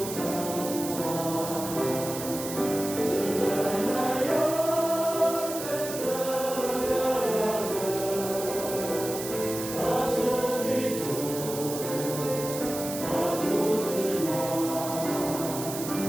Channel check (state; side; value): noise; right; hiss, 8 dB below the sound